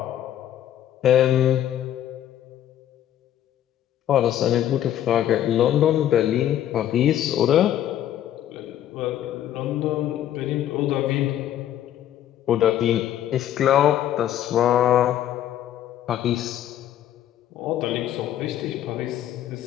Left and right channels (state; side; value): quieter; right; 11.5 dB